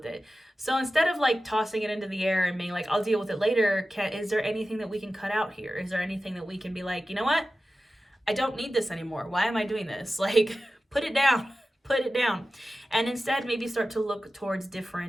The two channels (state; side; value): normal; both; correlation 0.94